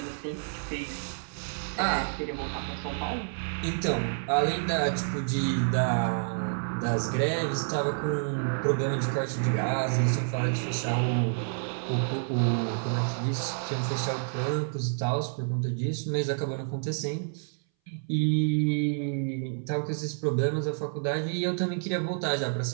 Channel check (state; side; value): silent; left; 59 dB below the other